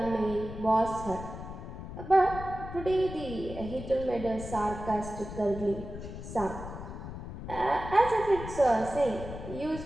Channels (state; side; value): noise; left; rumble, 10 dB below the sound